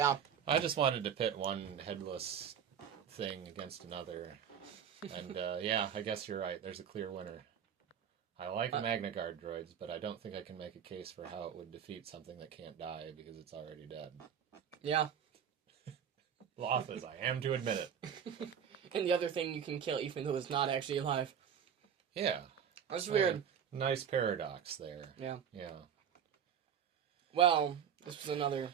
I just wanted to pit one headless thing against another. And, yeah, I guess you're right. There's a clear winner. I like Magnagard droids, but I don't think I can make a case for how it would defeat something that can't die because it's already dead. Yeah. Loth as I am to admit it. And the other thing you can kill even though it's not actually alive. Yeah. That's weird. Nice paradox there. Yeah. Yeah. Well, this was another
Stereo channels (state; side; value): quieter; left; 8.2 dB